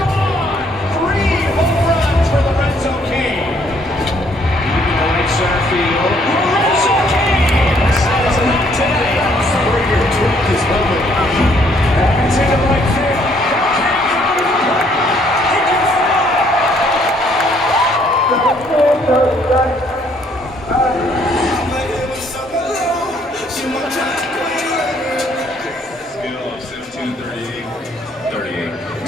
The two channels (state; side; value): normal; both; correlation 0.66